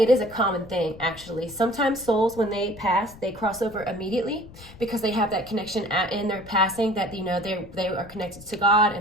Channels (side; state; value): left; noise; rumble, 19 dB below the sound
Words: it is a common thing, actually. Sometimes souls, when they pass, they cross over immediately because they have that connection in their passing, that, you know, they are connected to God